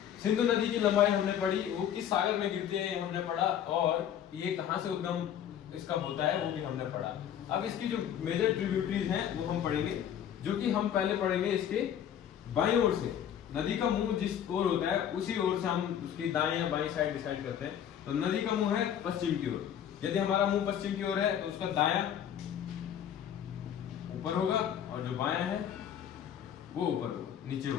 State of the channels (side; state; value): right; quieter; 9.6 dB